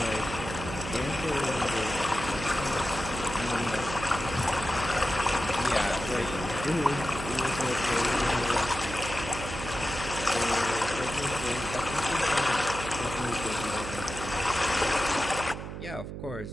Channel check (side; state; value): right; noise; hum, 8 dB below the sound